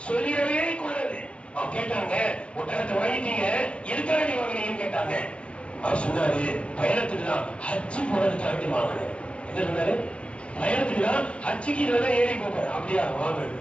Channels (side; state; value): right; late; 0.059 ms